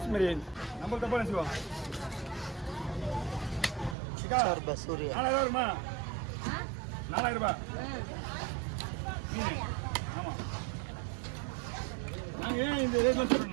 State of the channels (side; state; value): left; drops out; at 4.0 s